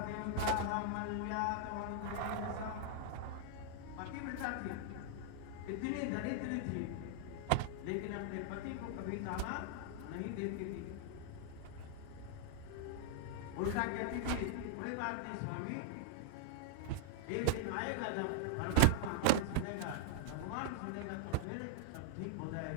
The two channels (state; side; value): different; both; correlation -0.01